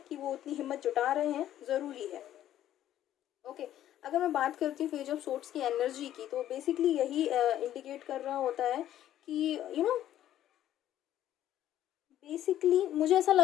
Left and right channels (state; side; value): quieter; right; 12.1 dB